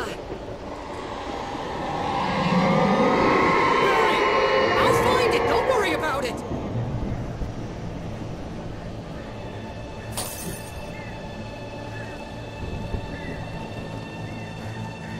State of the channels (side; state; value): both; identical; correlation 1.00